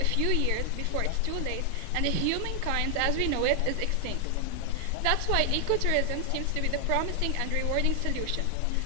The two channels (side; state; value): both; different; correlation 0.00